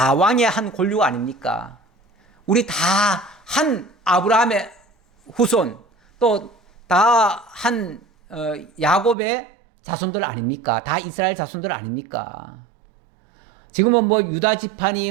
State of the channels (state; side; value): drops out; left; at 9.2 s